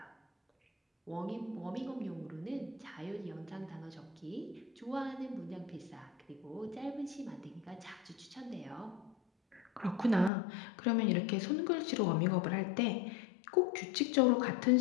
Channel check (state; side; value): drops out; right; at 10.3 s